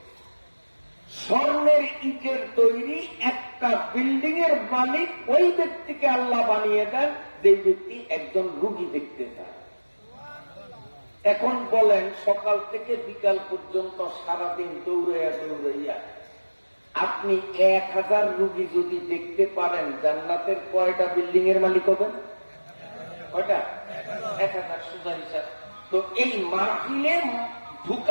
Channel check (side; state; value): both; inverted; correlation -1.00